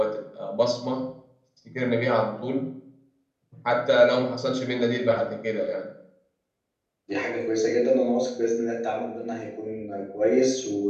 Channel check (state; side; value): identical; both; correlation 1.00